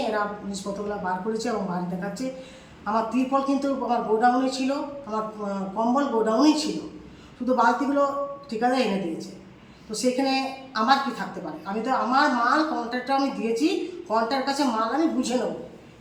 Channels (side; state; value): both; identical; correlation 1.00